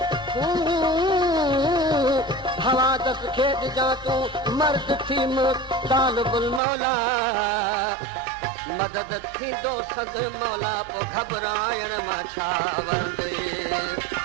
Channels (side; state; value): left; drops out; at 6.6 s